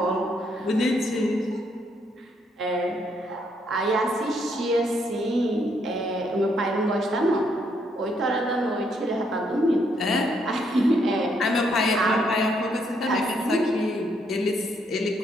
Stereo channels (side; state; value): both; normal; correlation 0.73